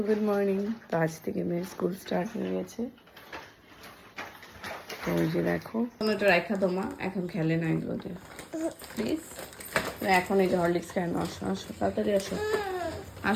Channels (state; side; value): identical; both; correlation 1.00